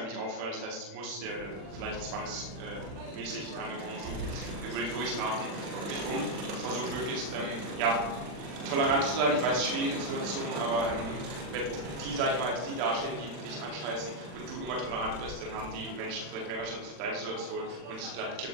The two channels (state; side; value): late; left; 40 ms